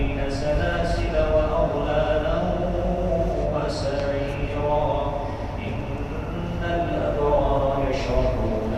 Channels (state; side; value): identical; both; correlation 1.00